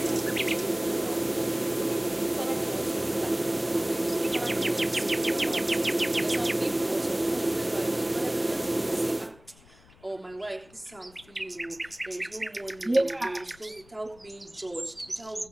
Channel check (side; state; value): left; noise; rumble, 26 dB below the sound